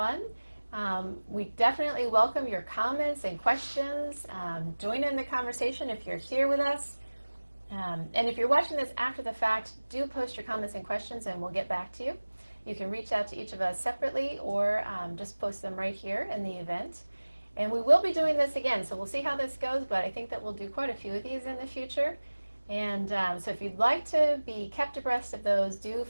We definitely welcome your comments and questions. Join in the conversation if you're here with us. And if you're watching this after the fact, do post your comments and questions and we'll get back to you. You can reach out to each of us separately or just post them right here in the event. And we will be doing this again, so we'll see how this goes, but I think that we'll do quite a few of these in the future. And so if you'd like to be kept abreast of those, do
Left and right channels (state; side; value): inverted; both; correlation -1.00